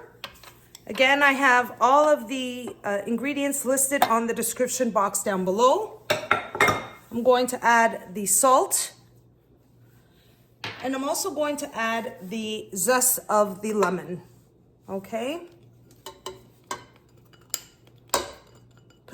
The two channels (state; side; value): identical; both; correlation 1.00